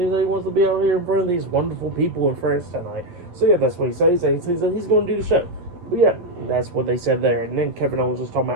that he wants to be out here in front of these wonderful people in France tonight. So yeah, that's what he says. He says that he's going to do the show. But yeah, that's what they said there. And then Kevin Owens was talking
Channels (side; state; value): left; late; 11 ms